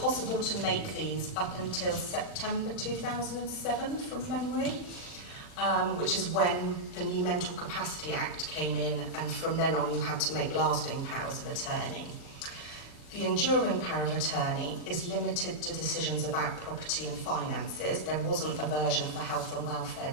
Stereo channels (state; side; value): late; right; 40 ms